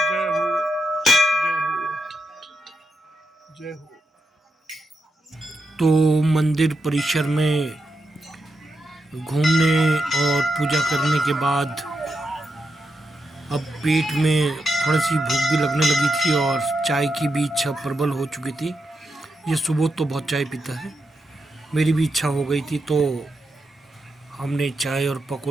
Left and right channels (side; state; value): both; normal; correlation 0.85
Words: जय हो, जय हो, जय हो। तो मंदिर परिसर में घूमने और पूजा करने के बाद अब पेट में थोड़ी सी भूख भी लगने लगी थी और चाय की भी इच्छा प्रबल हो चुकी थी। ये सुबह तो बहुत चाय पीता है, मेरी भी इच्छा हो गई थी, तो हमने चाय और